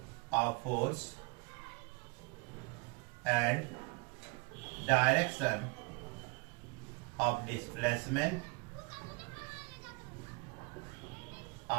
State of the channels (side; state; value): left; quieter; 29.5 dB